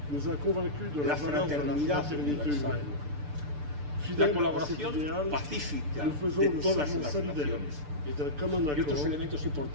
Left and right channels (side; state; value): left; late; 6.8 ms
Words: la fraternidad universal, la colaboración pacífica de todas las naciones y otros elementos